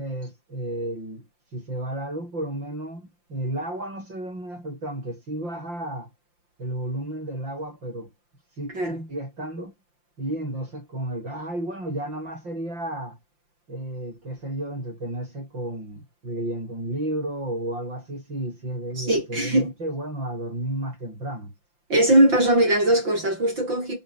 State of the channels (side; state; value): left; late; 5.8 ms